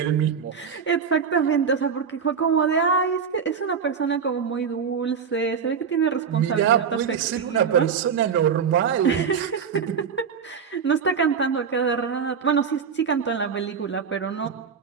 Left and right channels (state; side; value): quieter; left; 6.6 dB